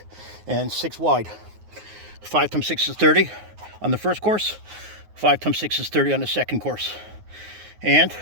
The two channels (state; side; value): late; left; 9.5 ms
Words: and 6 wide. 5 times 6 is 30 on the first course. 5 times 6 is 30 on the second course. And